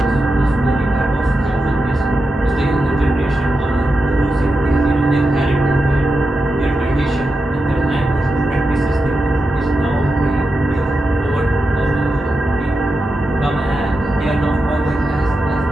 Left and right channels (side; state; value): both; normal; correlation 0.89